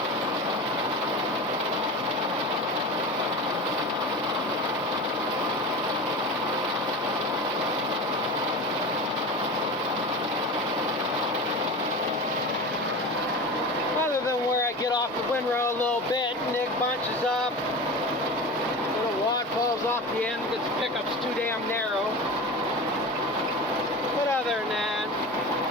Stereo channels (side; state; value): both; normal; correlation 0.30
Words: Get off the windrow a little bit, and it bunches up. Little wad falls off the end because the pickup's too damn narrow. But other than that,